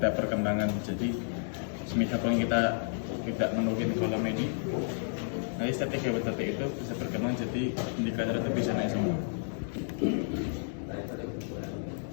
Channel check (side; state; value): right; silent; digital silence